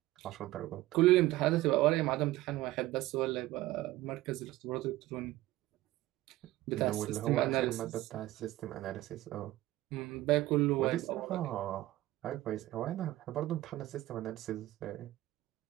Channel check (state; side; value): quieter; left; 16.7 dB